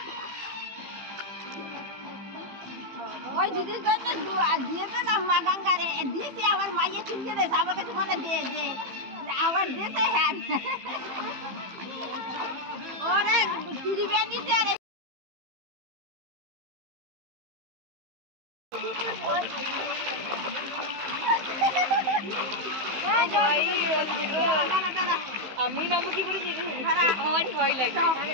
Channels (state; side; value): late; left; 15 ms